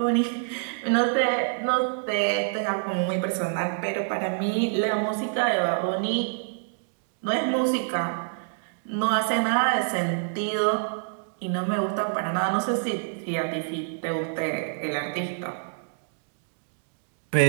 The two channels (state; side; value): silent; left; digital silence